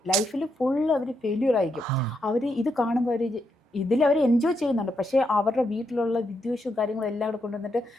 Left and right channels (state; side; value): normal; both; correlation 0.81